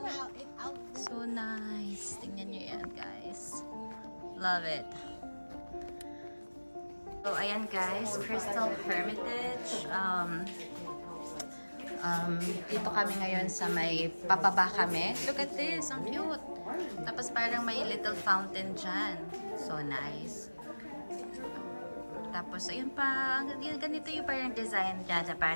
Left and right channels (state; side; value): inverted; both; correlation -1.00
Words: So nice. Tingnan nyo yan, guys. Love it. So, ayan guys, Crystal Hermitage. Dito kami ngayon sa may papaba kami. Look at this, ang cute. Tapos parang may little fountain dyan. So nice. Tapos, ayun pa, ganito yung parang design dyan.